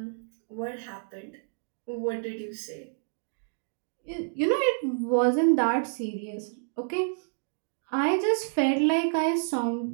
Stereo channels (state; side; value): silent; left; digital silence